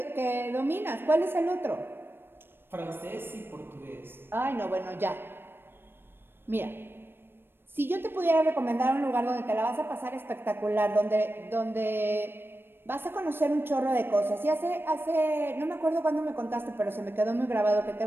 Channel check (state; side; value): late; left; 0.10 ms